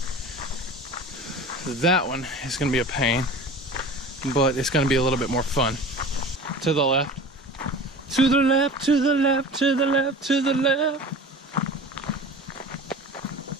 That one is going to be a pain, but it's going to be a little bit more fun. To the left. To the left, to the left, to the left, to the left.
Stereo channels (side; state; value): both; normal; correlation 0.38